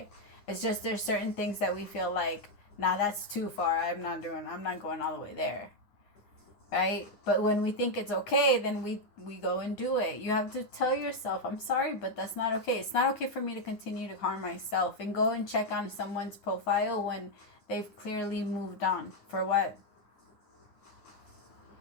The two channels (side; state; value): right; late; 9.6 ms